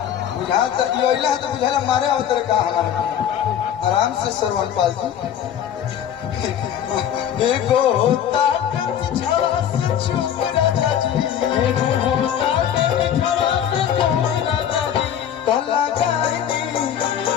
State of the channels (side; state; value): right; quieter; 9.6 dB